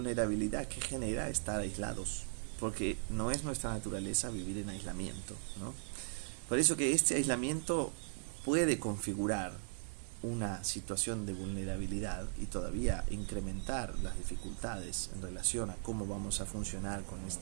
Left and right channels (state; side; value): silent; left; digital silence